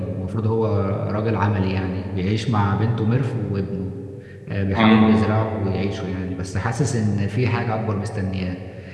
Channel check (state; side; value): identical; both; correlation 1.00